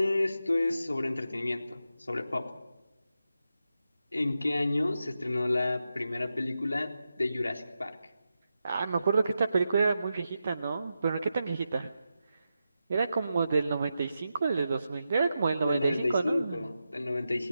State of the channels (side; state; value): both; inverted; correlation -0.89